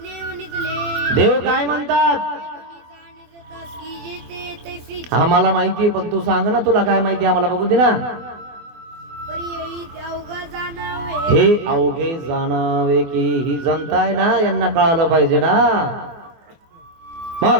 देव काय म्हणतात, आम्हाला माहितीये पण तू सांग ना, तुला काय माहिती आम्हाला बघू दे ना. हे अवघे जाणावे की ही जनता आहे ना, यांना कळालं पाहिजे ना.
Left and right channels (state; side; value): late; left; 24 ms